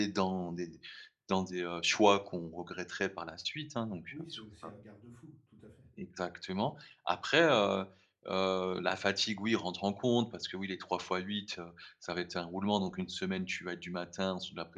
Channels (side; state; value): both; identical; correlation 1.00